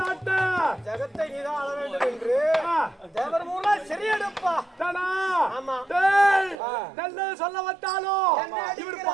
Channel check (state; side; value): drops out; left; at 6.6 s